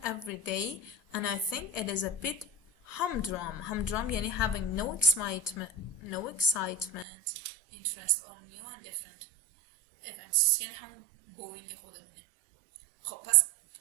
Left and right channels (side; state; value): left; drops out; at 7.1 s